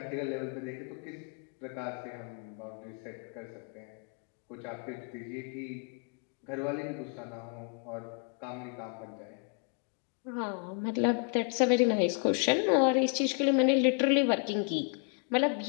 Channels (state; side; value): quieter; right; 39.1 dB